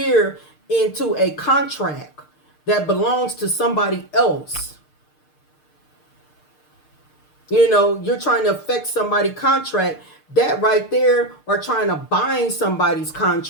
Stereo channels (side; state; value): right; late; 6.6 ms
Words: into a contract that belongs to somebody else. You know, you're trying to affect somebody's contract. That right there, or trying to bind somebody's